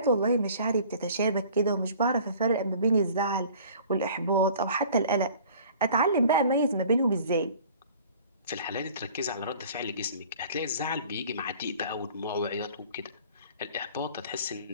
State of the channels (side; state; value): both; inverted; correlation -0.49